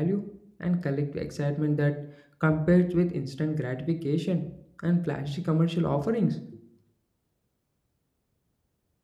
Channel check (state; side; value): identical; both; correlation 1.00